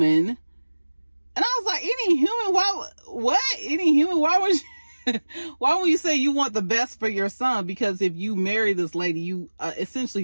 And I was like, any human? What? Any human? Why would you say you want the best for your son? Because if you marry this lady, you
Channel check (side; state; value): both; inverted; correlation -1.00